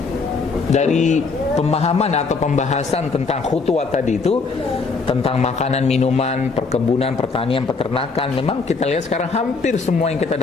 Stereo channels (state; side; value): quieter; right; 4.5 dB